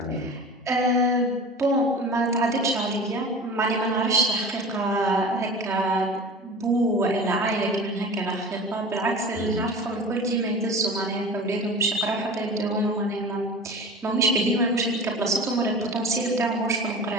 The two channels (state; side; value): normal; both; correlation 0.35